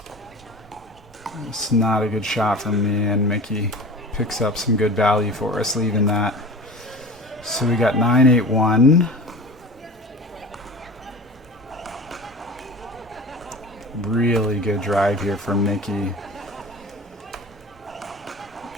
It's not a good shot from me, and Mickey picks up some good value for us, leaving that. So we got 9-8-1. Really good drive here from Mickey.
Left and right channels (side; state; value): both; normal; correlation 0.36